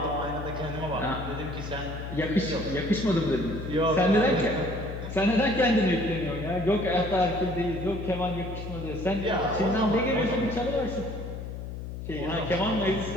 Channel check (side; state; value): left; noise; hum, 8 dB below the sound